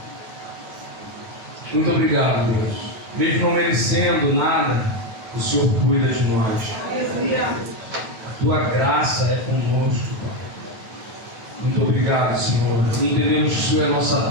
Muito obrigado, Deus. Mesmo não merecendo nada, o Senhor cuida de nós. A Tua graça é conosco, Pai. Muito obrigado, Senhor. Entendemos que o Senhor é nossa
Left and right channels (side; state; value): left; late; 9.1 ms